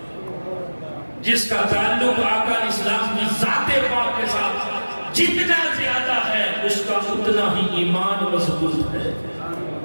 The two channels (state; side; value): inverted; both; correlation -1.00